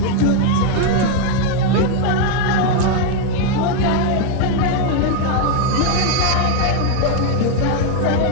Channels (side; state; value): both; different; correlation 0.01